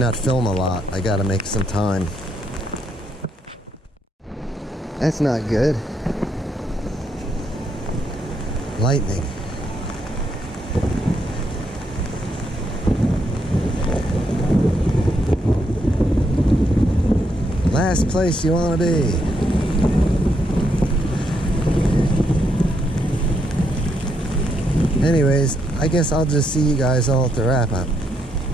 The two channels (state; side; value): normal; both; correlation 0.77